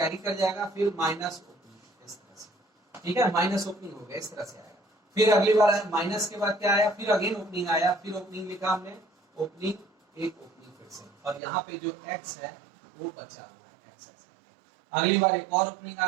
कर जाएगा, फिर माइनस ओपनिंग, इस तरह से, ठीक है, माइनस ओपनिंग हो गया, इस तरह से आएगा। फिर अगली बार आया माइनस के बाद क्या आया, फिर अगेन ओपनिंग आया, फिर ओपनिंग लिखा हमने, ओपनिंग, एक ओपनिंग फिर से, और यहाँ पे जो x है वो बचा हुआ है, x। अगली बार एक और ओपनिंग आ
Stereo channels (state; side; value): drops out; left; at 11.4 s